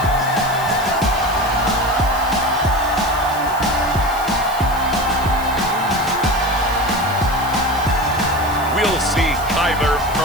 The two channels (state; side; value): noise; right; hiss, 15 dB below the sound